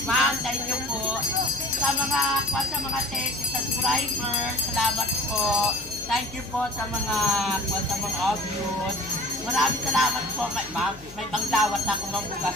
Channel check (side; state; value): left; noise; hum, 19 dB below the sound